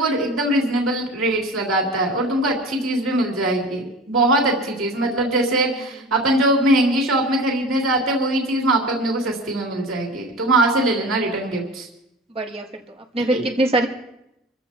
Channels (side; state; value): both; normal; correlation 0.35